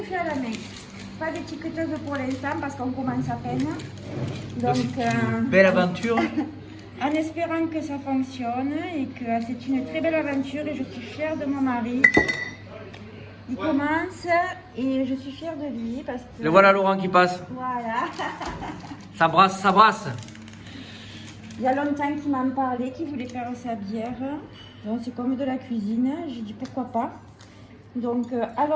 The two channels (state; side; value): identical; both; correlation 1.00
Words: fait à la main. Pas d'étiqueteuse pour l'instant parce qu'on commence à peine. Donc, Belle aventure. en espérant que ça fonctionne et que c'est une très belle aventure et je suis fière de mon mari. Il commence et je suis fière de lui parce que... Le voilà Laurent qui passe. Voilà. Ça brasse, ça brasse. Il y a longtemps qu'il m'en parlait, qu'il voulait faire sa bière. Donc c'est comme de la cuisine. J'ai dit pourquoi pas. Donc